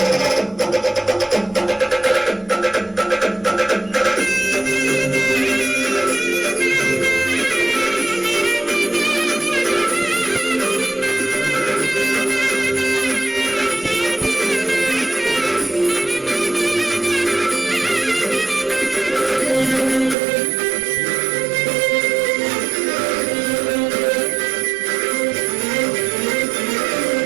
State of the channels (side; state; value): left; drops out; at 20.2 s